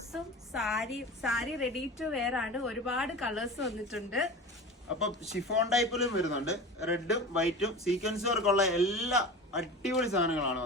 സാരി റെഡി ടു വെയർ ആണ്. ഒരുപാട് കളേഴ്സ് വന്നിട്ടുണ്ട്. അപ്പൊ ഷിഫോൺ ടൈപ്പിലും വരുന്നുണ്ട്. റെഡും വൈറ്റും സീക്വൻസ് വർക്കുള്ള എല്ലാ അടിപൊളി സാധനങ്ങളാണ്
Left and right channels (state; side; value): normal; both; correlation 0.32